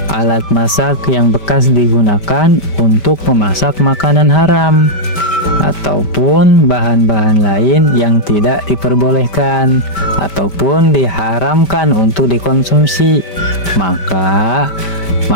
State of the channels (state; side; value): late; right; 5.1 ms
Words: alat masak yang bekas digunakan untuk memasak makanan haram, ataupun bahan-bahan lain yang tidak diperbolehkan ataupun diharamkan untuk dikonsumsi, maka